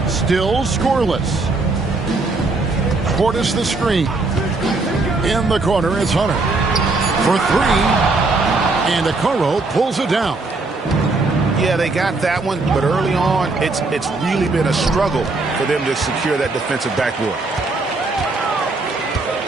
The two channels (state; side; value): quieter; left; 3.5 dB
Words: Still scoreless. Portis the screen. In the corner, it's Hunter. For 3. And Okoro pulls it down. Yeah, they got that one, but early on, it's really been a struggle for them to secure that defensive backboard.